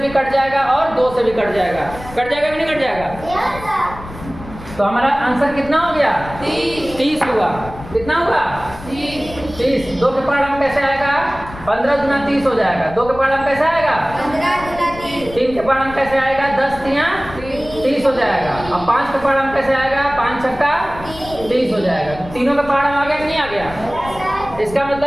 कट जाएगा और 2 से भी कट जाएगा। कट जाएगा कि नहीं कट जाएगा? तो हमारा आंसर कितना हो गया? 30 हुआ। कितना हुआ? 30। 2 के पहाड़ा में कैसे आएगा? 15 गुना 30 हो जाएगा। 2 के पहाड़ा में कैसे आएगा? 3 के पहाड़ा में कैसे आएगा? 10 तियां 30 हो जाएगा। अब 5 के पहाड़ा में कैसे आएगा? 5 छक्का 30 हो जाएगा। तीनों के पहाड़ा में आ गया कि नहीं आ गया? इसका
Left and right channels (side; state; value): left; noise; rumble, 15 dB below the sound